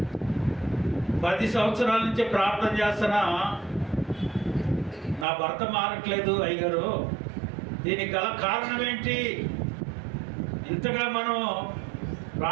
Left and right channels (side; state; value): left; drops out; at 5.2 s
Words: 10 సంవత్సరాల నుంచి ప్రార్థన చేస్తున్నా నా భర్త మారట్లేదు అయ్యగారు, దీనికి గల కారణం ఏంటి? ఇంతగా మనం